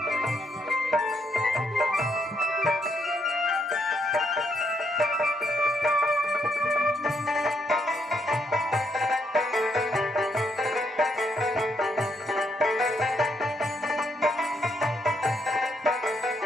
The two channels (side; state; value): both; normal; correlation 0.74